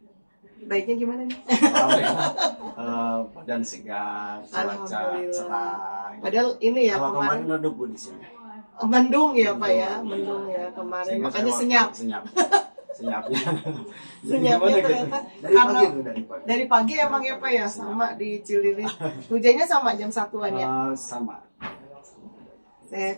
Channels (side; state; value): both; inverted; correlation -1.00